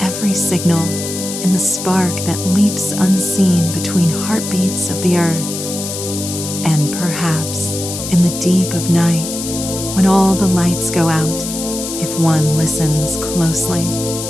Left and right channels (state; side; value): noise; left; hiss, 7 dB below the sound